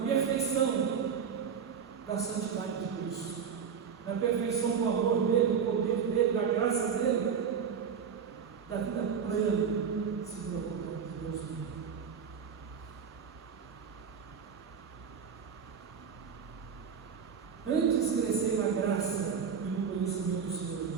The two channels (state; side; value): quieter; left; 6.9 dB